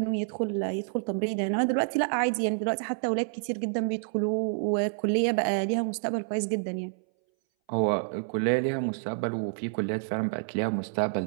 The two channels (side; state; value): left; silent; 59 dB below the other